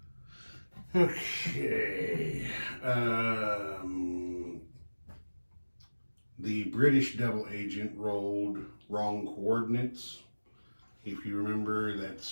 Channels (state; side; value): inverted; both; correlation -1.00